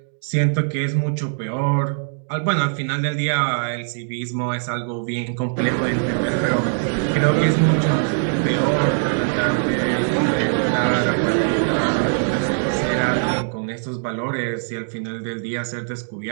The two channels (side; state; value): left; silent; digital silence